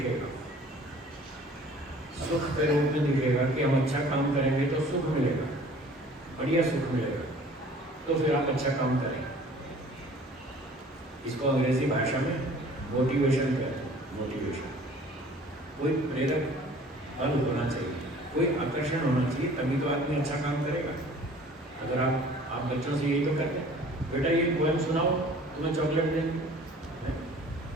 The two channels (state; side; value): normal; both; correlation 0.50